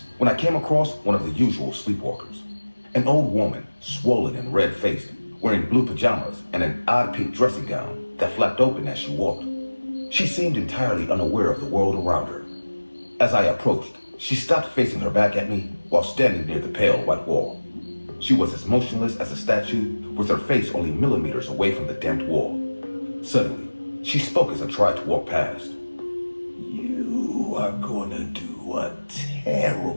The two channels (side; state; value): both; inverted; correlation -1.00